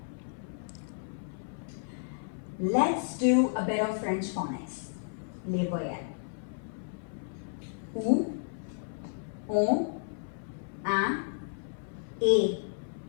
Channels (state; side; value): silent; right; 56 dB below the other